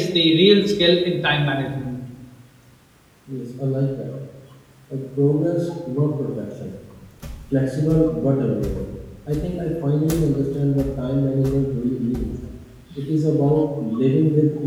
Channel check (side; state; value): both; identical; correlation 1.00